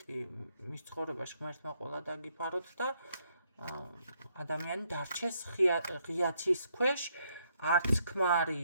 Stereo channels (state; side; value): inverted; both; correlation -0.73